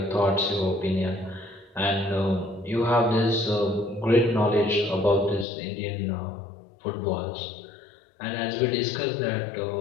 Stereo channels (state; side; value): drops out; right; at 5.5 s